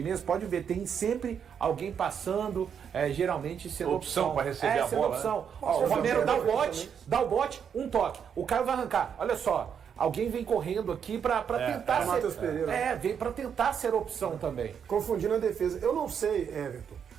mesmo, pode ver, tem sempre alguém passando, geralmente sendo opção para receber a bola. Opção. Né? O Romero dá o bote, um toque. O Caio vai arrancar. Olha só, alguém vem correndo aqui para tentar ser. Matheus Pereira. Vem para tentar ser opção também. Confundindo a defesa. Eu não sei, Everton,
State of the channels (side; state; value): left; quieter; 7.6 dB